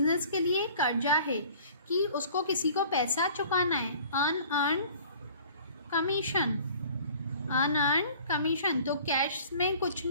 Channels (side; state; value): both; inverted; correlation -0.49